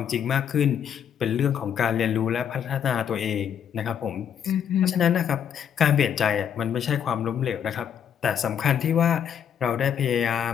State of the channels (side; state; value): right; quieter; 8.5 dB